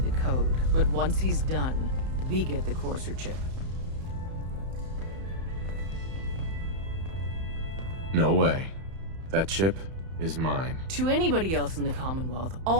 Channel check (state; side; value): late; left; 31 ms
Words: code, but once he's done, we get the courser chip. No way. That chip is mine. To anybody else in the Commonwealth,